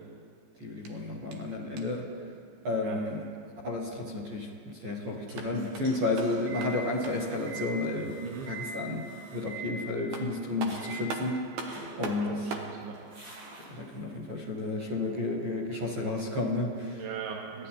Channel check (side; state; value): left; late; 14 ms